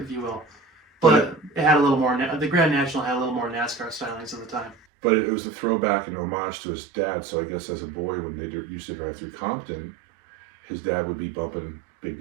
you will. But it had a little more. The Grand National had a little more NASCAR stylings at the time. But it was a throwback and homage to his dad. So I guess as a boy, when they used to drive through Compton, his dad would be bumping Big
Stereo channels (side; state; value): left; drops out; at 4.8 s